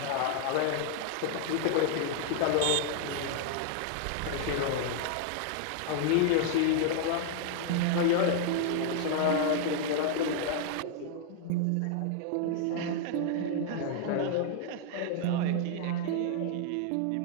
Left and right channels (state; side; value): different; both; correlation 0.00